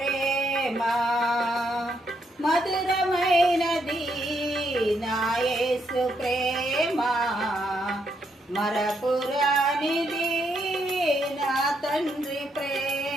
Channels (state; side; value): normal; both; correlation 0.76